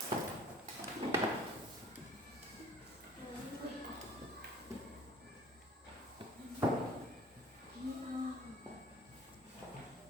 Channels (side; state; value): both; normal; correlation 0.51